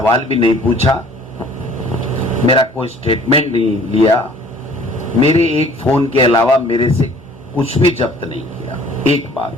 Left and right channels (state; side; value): normal; both; correlation 0.53